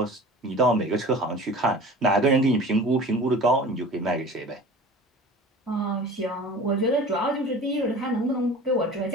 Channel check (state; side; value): normal; both; correlation 0.40